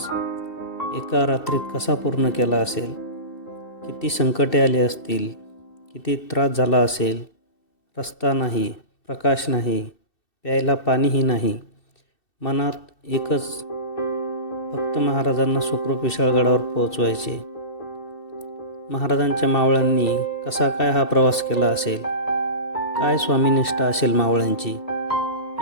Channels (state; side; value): late; right; 2.7 ms